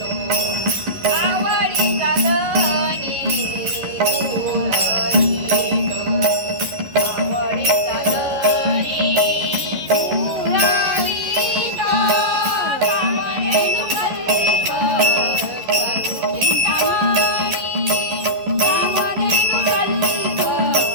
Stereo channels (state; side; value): late; left; 11 ms